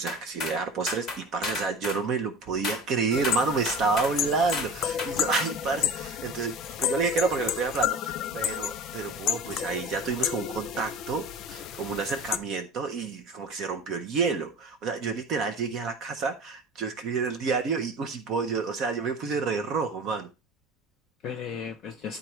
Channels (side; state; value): both; normal; correlation 0.36